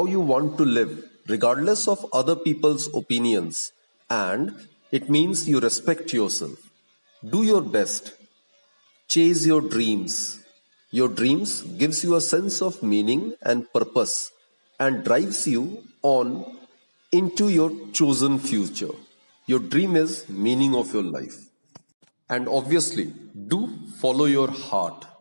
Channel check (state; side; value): inverted; both; correlation -1.00